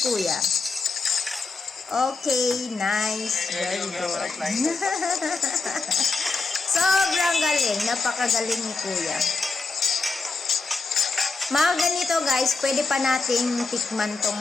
Okay, nice. Very good. Sobrang galing. Napakagaling ni Kuya. Mga ganito, guys, pwede pa nating tikman tong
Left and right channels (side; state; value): right; quieter; 4.1 dB